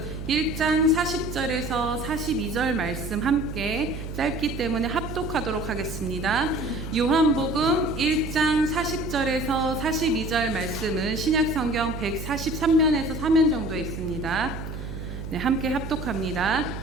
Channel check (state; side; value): noise; right; hum, 8 dB below the sound